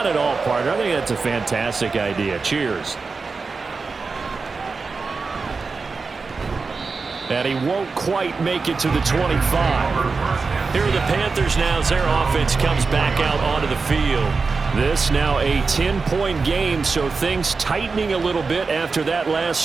at all, partner. I think that's a fantastic idea. Cheers. And he won't quite make it to the 25. Here are the Panthers now as their offense comes back out onto the field. This now a 10-point game, so things tightening a little bit after that last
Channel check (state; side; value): quieter; left; 4.5 dB